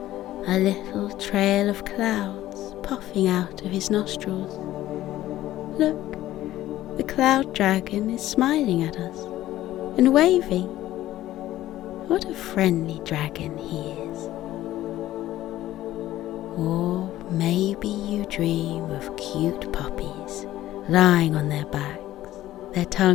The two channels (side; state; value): right; quieter; 14.5 dB